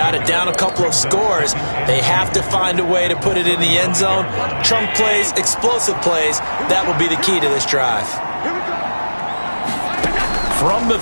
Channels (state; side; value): inverted; both; correlation -1.00